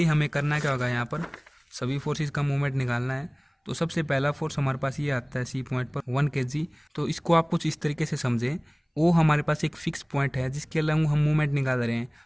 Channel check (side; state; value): both; identical; correlation 1.00